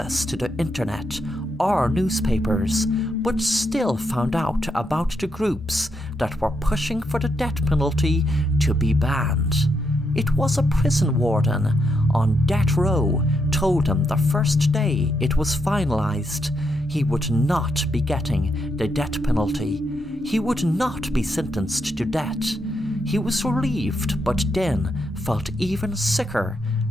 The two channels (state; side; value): normal; both; correlation 0.80